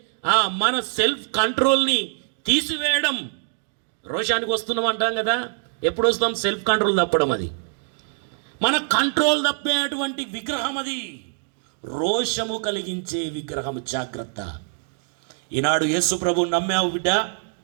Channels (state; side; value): silent; left; 56 dB below the other